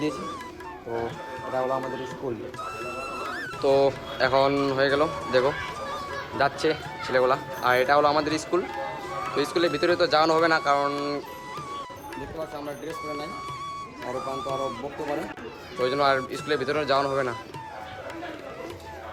দিয়েছি। তো এটা হলো আমাদের স্কুল। তো এখন হয়ে গেল, দেখো যাচ্ছে ছেলেগুলা। আর এটা হলো আমাদের স্কুল। তো স্কুলের ভিতরে তো যাওয়ানো হবে না, কারণ দেখতে পাচ্ছি আমরা ড্রেস করে নাই, আরও প্রান্ত আরও বকতে পারে। তো ওই জন্য আর স্কুলের ভিতরে যাওয়ানো হবে না।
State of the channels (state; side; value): identical; both; correlation 1.00